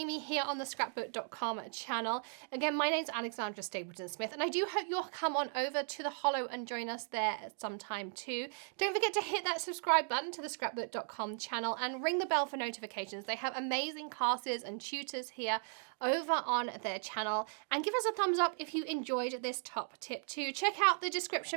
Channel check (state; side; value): silent; left; 53 dB below the other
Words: me here on the Scrapbook.com channel. Again, my name's Alexandra Stapleton Smith, and I do hope you'll come on over to the Hollow and join us there at some time too. Don't forget to hit that subscribe button to the Scrapbook.com channel and ring the bell for notifications. They have amazing classes and tutors here over on their channel, and give us a thumbs up if you enjoyed this top tip too. Check out the